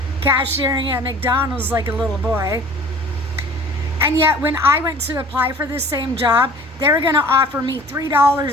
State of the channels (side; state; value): both; normal; correlation 0.47